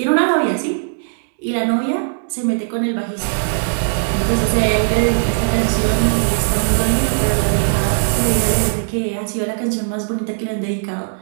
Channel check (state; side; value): silent; left; digital silence